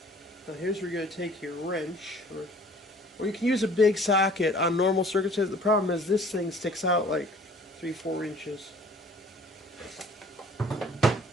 Now here's where you're going to take your wrench, or you can use a big socket on normal circumstances. The problem is this thing sticks out like 3-4 inches.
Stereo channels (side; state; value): both; normal; correlation 0.52